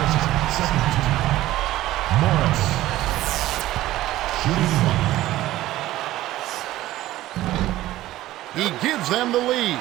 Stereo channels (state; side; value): quieter; left; 15.4 dB